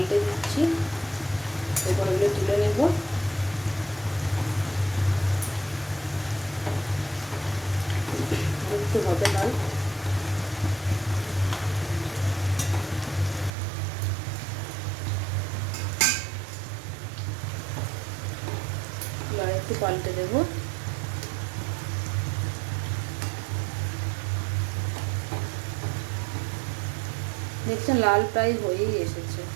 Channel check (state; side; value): drops out; left; at 13.5 s